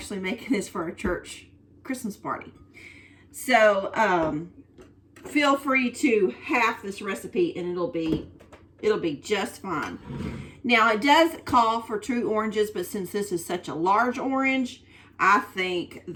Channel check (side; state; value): both; identical; correlation 1.00